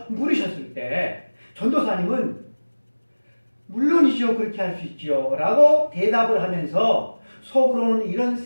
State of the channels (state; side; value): inverted; both; correlation -1.00